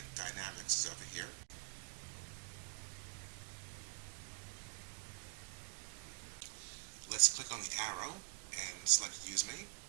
Dynamics is over here. Let's click on the arrow and select Use Me.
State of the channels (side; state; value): left; quieter; 36.6 dB